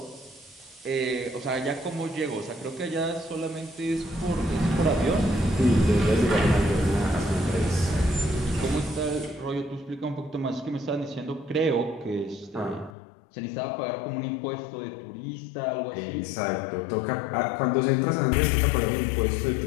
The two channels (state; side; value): drops out; right; at 12.9 s